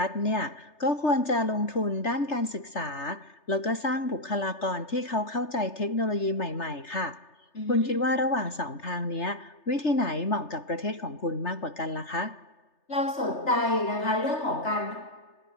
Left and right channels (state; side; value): late; right; 3.3 ms